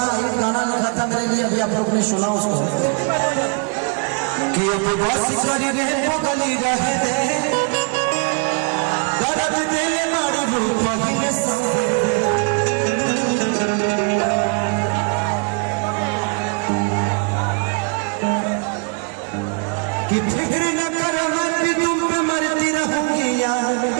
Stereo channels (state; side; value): quieter; left; 38.9 dB